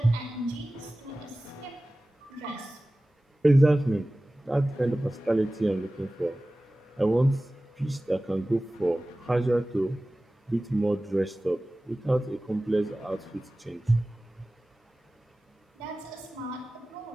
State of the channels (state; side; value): normal; both; correlation 0.97